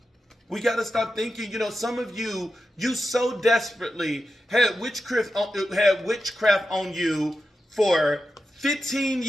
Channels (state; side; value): normal; both; correlation 0.90